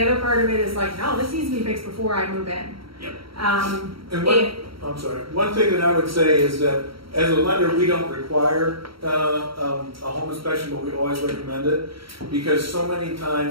other part of it is like, no, this needs to be fixed before I move in. Yep. I'm sorry. One thing that I would say is that as a lender, we don't require a home inspection, but we always recommend it, because so many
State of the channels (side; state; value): left; late; 0.74 ms